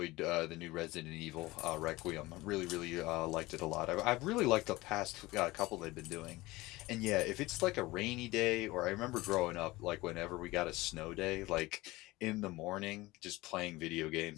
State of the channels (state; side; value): quieter; right; 20.1 dB